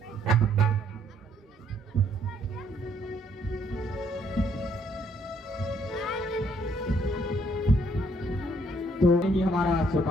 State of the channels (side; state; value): both; normal; correlation 0.67